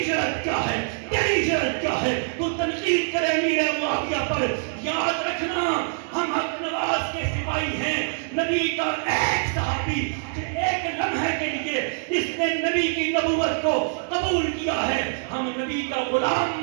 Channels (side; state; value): left; silent; digital silence